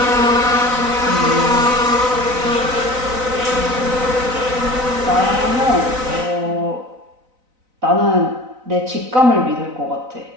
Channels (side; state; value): left; late; 4.0 ms